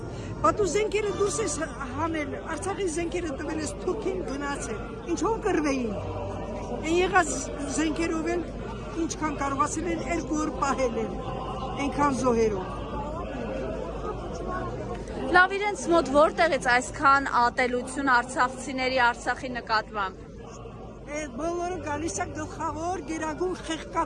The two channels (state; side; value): identical; both; correlation 1.00